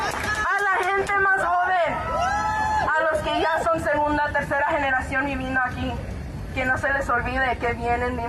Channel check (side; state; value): both; identical; correlation 1.00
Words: A la gente más joven, a los que ya son segunda, tercera generación viviendo aquí, que no se les olvide que vienen